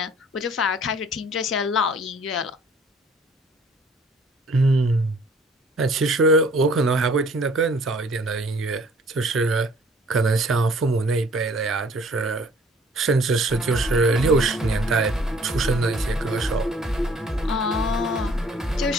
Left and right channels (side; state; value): both; normal; correlation 0.56